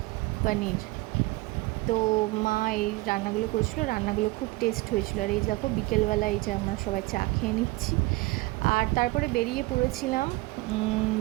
পনির। তো মা এই রান্নাগুলো করেছিল, রান্নাগুলো খুব টেস্ট হয়েছিল। আর এই দেখো, বিকেলবেলা এই যে আমরা সবাই চা খেয়ে নিচ্ছি। আর তারপরে বেরিয়ে পড়েছিলাম,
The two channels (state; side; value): quieter; left; 22.0 dB